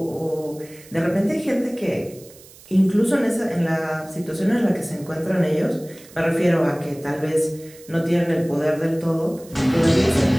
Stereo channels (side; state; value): right; noise; hiss, 22 dB below the sound